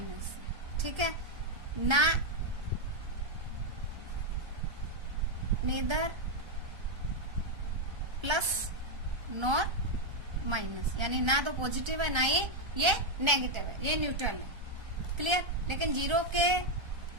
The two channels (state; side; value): late; left; 1.3 ms